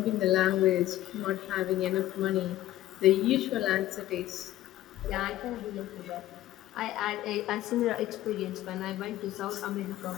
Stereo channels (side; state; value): right; quieter; 14.5 dB